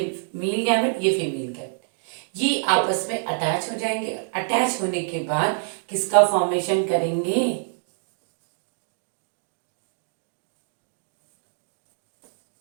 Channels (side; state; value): left; silent; digital silence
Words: मेल गैमेट, ये फीमेल गैमेट। ये आपस में अटैच हो जाएंगे। अटैच होने के बाद किसका फॉर्मेशन करेंगे?